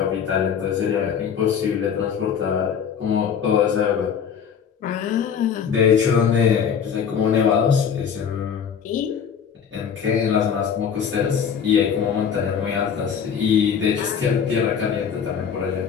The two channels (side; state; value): right; quieter; 7.5 dB